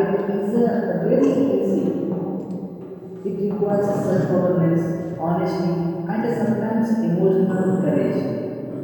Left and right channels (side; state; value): both; identical; correlation 1.00